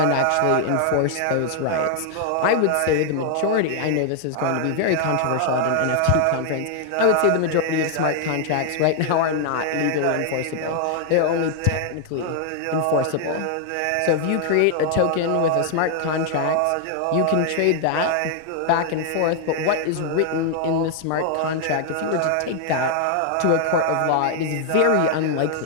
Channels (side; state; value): both; different; correlation 0.00